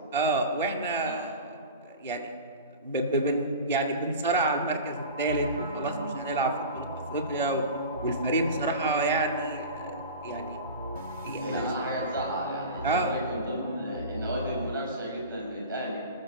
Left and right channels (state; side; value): inverted; both; correlation -0.33